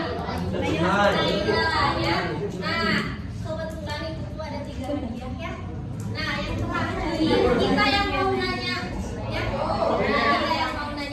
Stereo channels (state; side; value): identical; both; correlation 1.00